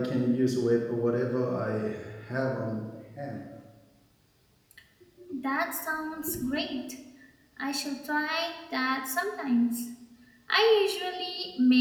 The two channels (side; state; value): both; identical; correlation 1.00